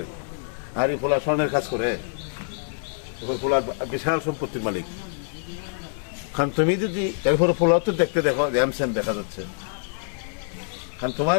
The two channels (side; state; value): right; silent; 56 dB below the other